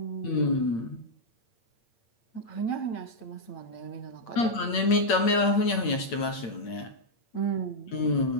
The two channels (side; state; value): right; late; 8.8 ms